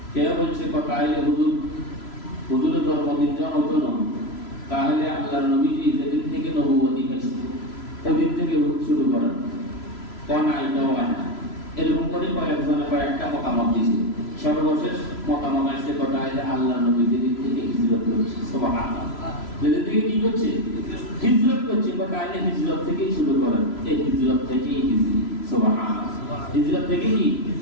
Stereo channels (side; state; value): right; late; 3.0 ms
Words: কেউ বলছে তাহলে হুজুরের জন্মদিন যখন হতো না, তাহলে আল্লাহর নবীজি যেদিন থেকে নবুয়তি পেয়েছে ওদিন থেকে শুরু করেন, কোন এটাও হয় না। এরকম করে কয়েকটা মতামত দিছে। সর্বশেষ মতামত আসছে তাহলে আল্লাহর নবী যেদিন থেকে হিজরত করেছে, সুবহানাল্লাহ, যেদিন থেকে কি করছে, হিজরত করছে, তাহলে হিজরত থেকেই শুরু করেন। এই হিজরত থেকেই হিজরি, সুবহানাল্লাহ, হিজরত থেকে কি